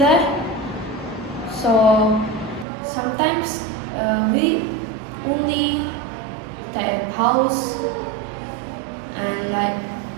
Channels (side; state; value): left; drops out; at 2.7 s